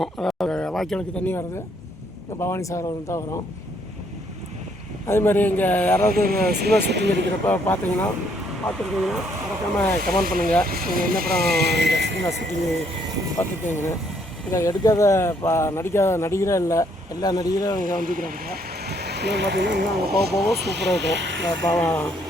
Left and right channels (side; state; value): both; normal; correlation 0.69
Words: அதாவது வாய்க்காலுக்கு தண்ணி வர்றது இங்கே பவானி சார் வந்து தான் வரும். அதேமாதிரி இங்கே யாராவது சினிமா ஷூட்டிங் எடுக்கிறப்ப பார்த்துருக்கீங்கன்னா மறக்காமல் கமெண்ட் பண்ணுங்கள். நீங்கள் என்ன படம் இந்த சினிமா ஷூட்டிங்கு பார்த்துருக்கீங்கன்னு. இதை எடுக்காத நடிக்காத நடிகரே இல்லை, எல்லா நடிகரும் இங்கே வந்துக்கிறாங்க. இன்னும் பார்த்திங்கன்னா இன்னும் அங்கே போக சூப்பராக இருக்கும். இந்த